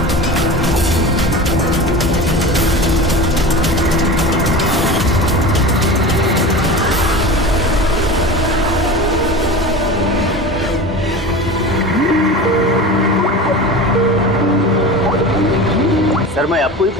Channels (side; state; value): both; normal; correlation 0.31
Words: सर मैं आपको ही